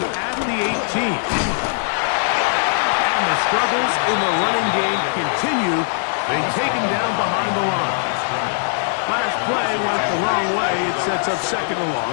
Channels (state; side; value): silent; right; 63 dB below the other